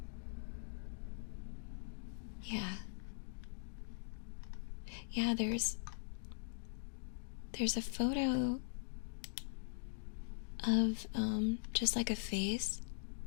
Yeah. Yeah, there's a photo of just like a face,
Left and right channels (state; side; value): silent; right; digital silence